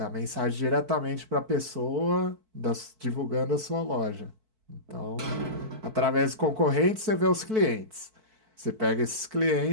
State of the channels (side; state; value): left; late; 4.5 ms